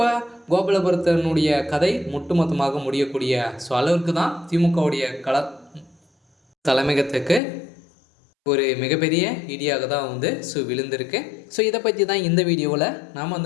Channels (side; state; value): right; drops out; at 7.4 s